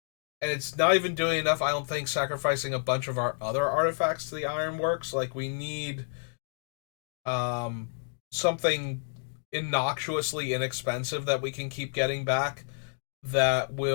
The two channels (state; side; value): silent; right; digital silence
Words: and it's not even doing enough, I don't think, sacrificing a bunch of our other artifacts to the Ironworks. Like, we need um something innocuously inexpensive that we can keep getting back that